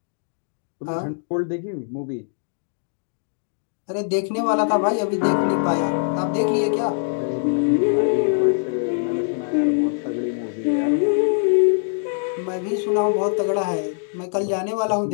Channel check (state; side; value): silent; right; digital silence